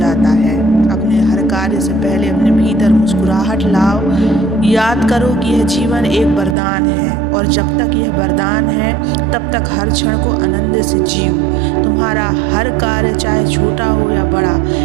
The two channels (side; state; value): left; drops out; at 6.6 s